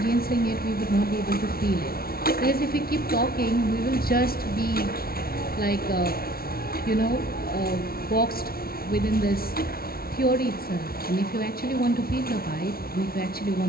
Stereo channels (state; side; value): late; right; 0.44 ms